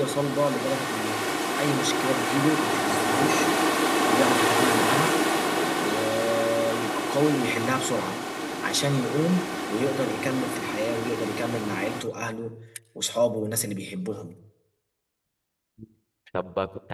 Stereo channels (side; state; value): both; identical; correlation 1.00